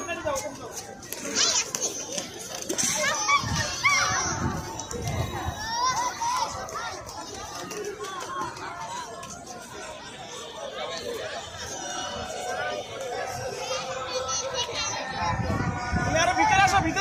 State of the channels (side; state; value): both; identical; correlation 1.00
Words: তুমি আরো ভিতরে আসো,